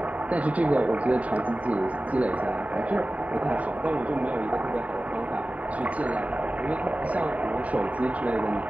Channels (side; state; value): left; late; 0.068 ms